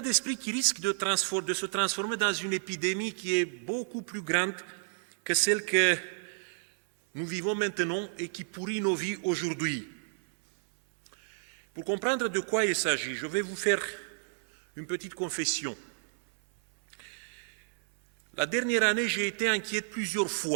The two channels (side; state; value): left; silent; 57 dB below the other